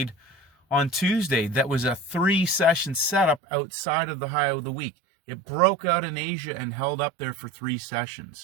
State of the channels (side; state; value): left; drops out; at 3.4 s